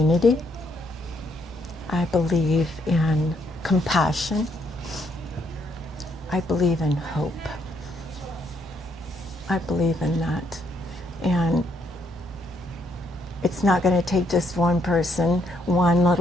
I believe in compassion. I believe in hope. I believe in that. And it's not going to take just one person, one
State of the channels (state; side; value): normal; both; correlation 0.72